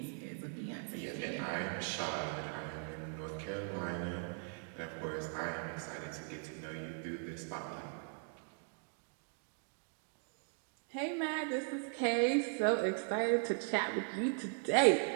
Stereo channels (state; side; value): silent; left; 52 dB below the other